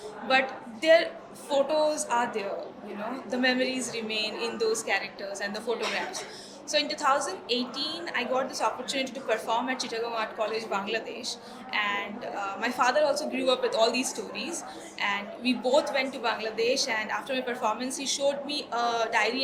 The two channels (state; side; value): identical; both; correlation 1.00